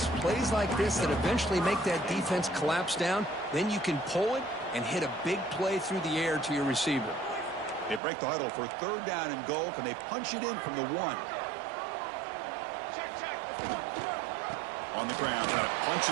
plays like this that eventually make that defense collapse down. Then you can pull it and hit a big play through the air to your receiver. They break the huddle for 3rd down and goal. Can they punch it in from the 1? On the ground, trying to punch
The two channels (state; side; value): drops out; left; at 8.0 s